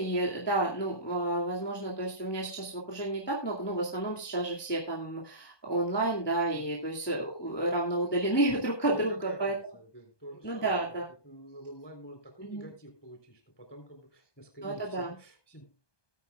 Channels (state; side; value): late; right; 1.2 ms